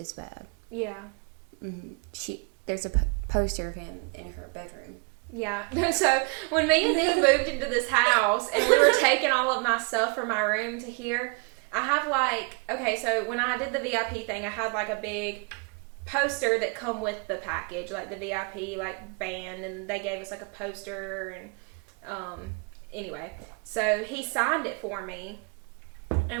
bad. Yeah. Mm-hmm. There's a poster of him in her bedroom. Yeah. So, when me and Dee moved into this house, and we were taking all of my stuff from my room to here, I have, like, okay, so when I did the VIP thing, I had, like, a big poster that come with the package, like the VIP, like, band, and they gave us, like, a poster, and, anyway, so he signed it for me,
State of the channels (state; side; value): quieter; left; 33.0 dB